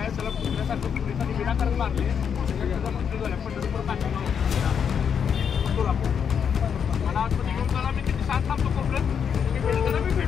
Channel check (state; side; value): quieter; right; 7.4 dB